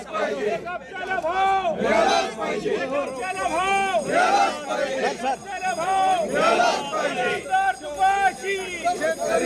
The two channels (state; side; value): identical; both; correlation 1.00